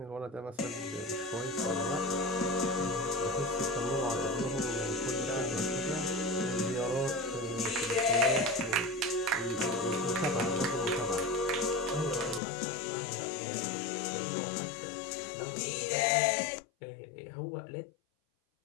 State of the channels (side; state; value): right; drops out; at 12.4 s